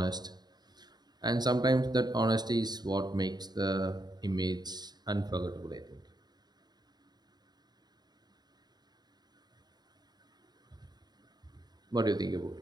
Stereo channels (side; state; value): left; late; 0.20 ms